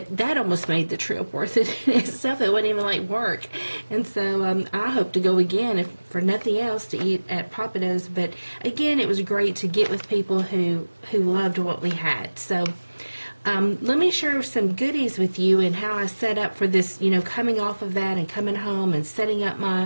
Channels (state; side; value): inverted; both; correlation -1.00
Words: that almost made the trip worth it in itself. It wasn't even like work. And so I hope to go again, if for nothing else, to eat at Papa Do's. But again, it was great to get with people who loved what we had. So let me share some goodies with you and how I set up for this, coming off of that and coming home and setting up